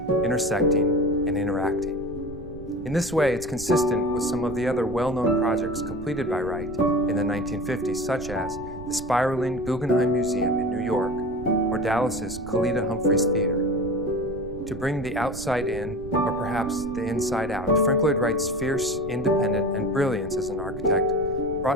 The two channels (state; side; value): noise; right; rumble, 14 dB below the sound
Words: intersecting and interacting. In this way, it's consistent with some of the other well-known projects completed by Wright in the 1950s, such as the spiraling Guggenheim Museum in New York or Dallas's Kalita Humphreys Theater. To bring the outside in, or perhaps the inside out, Frank Lloyd Wright's fierce, independent, and brilliance as an architect